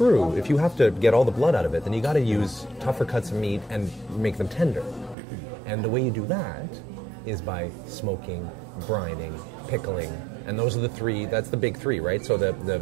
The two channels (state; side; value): drops out; left; at 5.2 s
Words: if you have to get all the blood out of it, then you got to use tougher cuts of meat and make them tender. And the way you do that is by smoking, brining, pickling, and those are the three. That's the big three, right? So